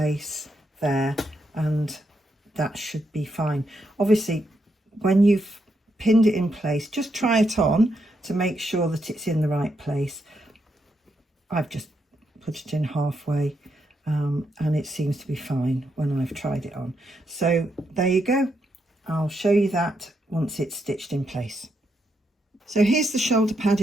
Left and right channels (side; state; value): both; normal; correlation 0.80